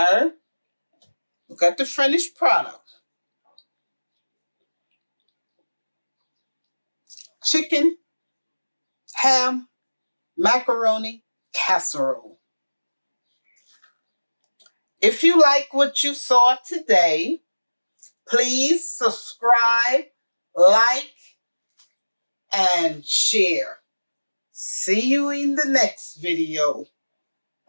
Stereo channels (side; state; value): both; inverted; correlation -1.00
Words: Look at the finished product. Chicken, ham, macaroni, casserole. If you like what you saw today, please subscribe, like, and share. See you in the next video.